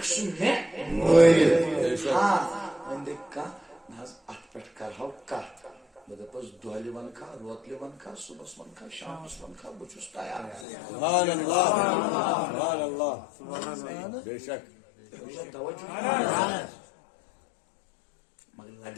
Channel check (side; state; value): right; drops out; at 10.7 s